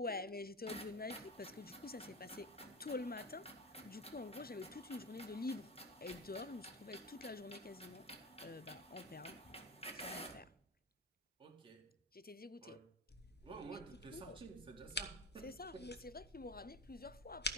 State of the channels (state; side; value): normal; both; correlation 0.24